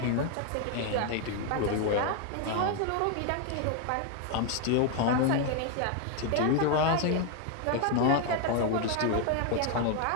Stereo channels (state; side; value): different; both; correlation 0.01